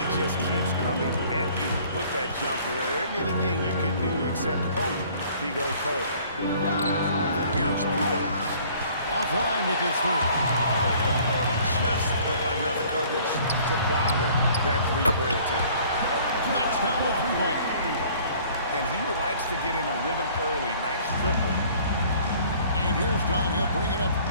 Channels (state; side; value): inverted; both; correlation -0.54